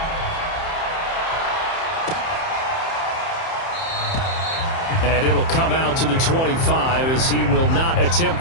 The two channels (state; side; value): late; right; 30 ms